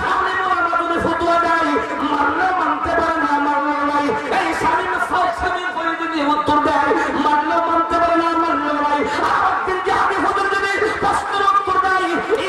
আলেম ওলামা যদি ফতোয়া দেয়, মানলেও মানতে পারে না, মানলেও নাই। এই স্বামী করে যদি উত্তর দেয়, মানলেও মানতে পারে না, মানলেও নাই। আর একদিন জিহাদি হুজুর যদি প্রশ্নের উত্তর দেয়,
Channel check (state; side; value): identical; both; correlation 1.00